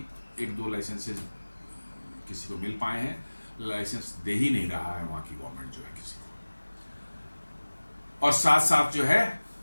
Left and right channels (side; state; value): both; inverted; correlation -1.00